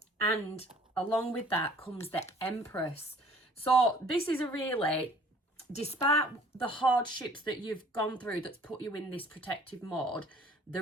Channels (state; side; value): normal; both; correlation 0.53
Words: And along with that comes the Empress. So this is a really, despite the hardships that you've gone through that's put you in this protective mode,